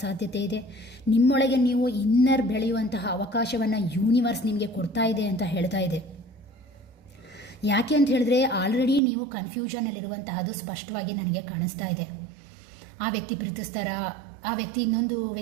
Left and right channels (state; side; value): drops out; left; at 9.0 s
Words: ಸಾಧ್ಯತೆ ಇದೆ. ನಿಮ್ಮೊಳಗೆ ನೀವು ಇನ್ನರ್ ಬೆಳೆಯುವಂತಹ ಅವಕಾಶವನ್ನು ಯೂನಿವರ್ಸ್ ನಿಮಗೆ ಕೊಡ್ತಾ ಇದೆ ಅಂತ ಹೇಳ್ತಾ ಇದೆ. ಯಾಕೆ ಅಂತ ಹೇಳಿದ್ರೆ, ಆಲ್ರೆಡಿ ನೀವು ಕನ್ಫ್ಯೂಷನಲ್ಲಿರುವಂತಹದ್ದು ಸ್ಪಷ್ಟವಾಗಿ ನನಗೆ ಕಾಣಿಸ್ತಾ ಇದೆ. ಆ ವ್ಯಕ್ತಿ ಪ್ರೀತಿಸ್ತಾರಾ, ಆ ವ್ಯಕ್ತಿ ಇನ್ನೊಂದು